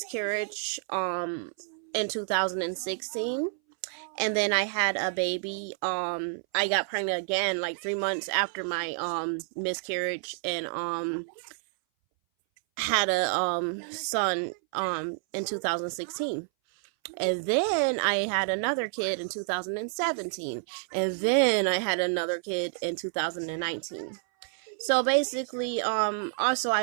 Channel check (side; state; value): left; silent; 58 dB below the other